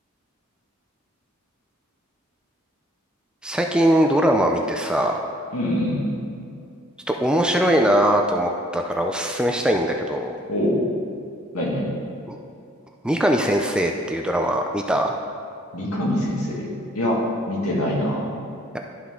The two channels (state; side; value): normal; both; correlation 0.64